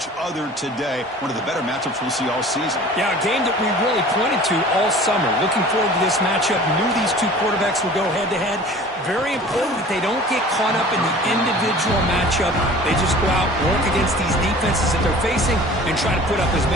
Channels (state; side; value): normal; both; correlation 0.44